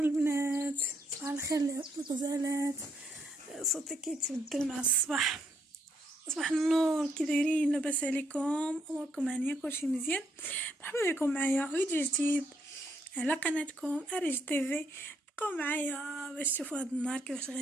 صباح الخير الغزالات. صوتي كيتبدل مع الصباح. صباح النور، كي دايرين؟ لاباس عليكم؟ اموركم هانيه؟ كلشي مزيان؟ مرحبا بكم معايا فيديو جديد على قناتكم اريج تيفي. بقاو معايا باش تشوفوا هذا النهار كيفاش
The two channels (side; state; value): both; normal; correlation 0.74